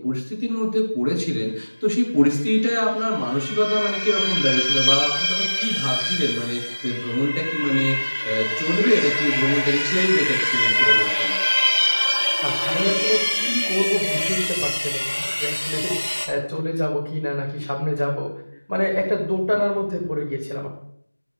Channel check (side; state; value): both; inverted; correlation -1.00